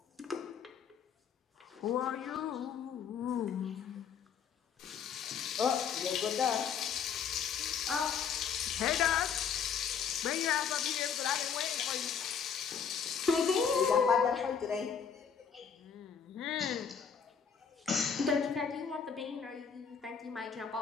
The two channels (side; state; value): right; quieter; 7.0 dB